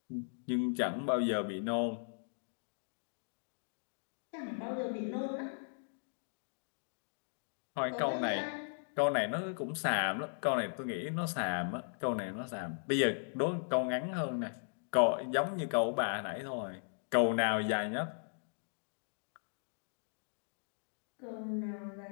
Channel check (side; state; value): right; silent; digital silence